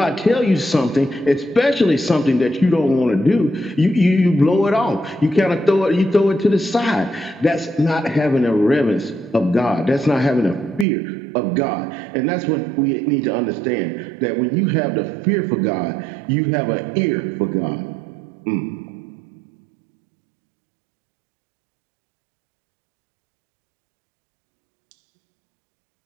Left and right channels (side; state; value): left; drops out; at 10.9 s